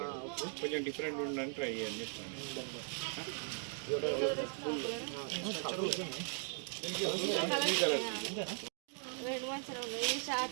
కొంచెం డిఫరెంట్ ఉండడానికి ట్రై చేయని చెప్తాను. రెండు మంచిగా ఉన్నాయి ఈ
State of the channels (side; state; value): left; silent; 52 dB below the other